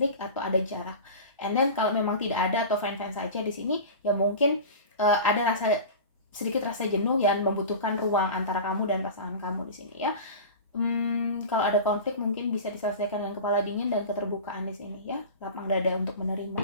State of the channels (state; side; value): inverted; both; correlation -0.32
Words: atau ada jarak, and then kalau memang tidak ada atau fine saja di sini ya, mungkin ada sedikit rasa jenuh yang membutuhkan ruang antara kamu dan pasangan kamu di sini ya. Kalau ada konflik mungkin bisa diselesaikan dengan kepala dingin dan keterbukaan di sini ya, lapang dada untuk menerima.